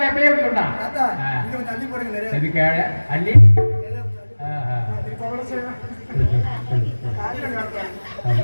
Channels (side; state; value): both; inverted; correlation -1.00